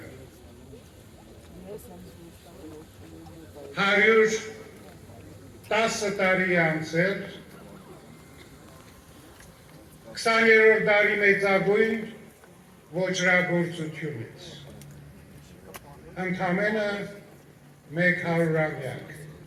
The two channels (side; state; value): both; identical; correlation 1.00